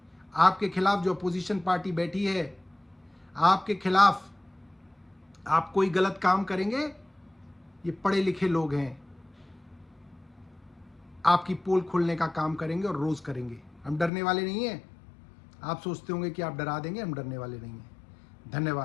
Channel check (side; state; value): right; drops out; at 14.1 s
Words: आपके खिलाफ जो अपोजिशन पार्टी बैठी है, आपके खिलाफ आप कोई गलत काम करेंगे, ये पढ़े लिखे लोग हैं, आपकी पोल खोलने का काम करेंगे और रोज करेंगे। हम डरने वाले नहीं हैं। आप सोचते होंगे कि आप डरा देंगे, हम डरने वाले नहीं हैं।